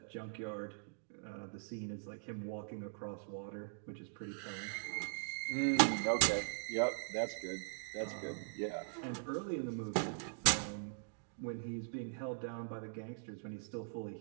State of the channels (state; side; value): silent; left; digital silence